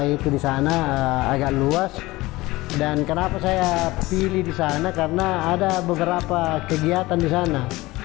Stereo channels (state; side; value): quieter; right; 19.7 dB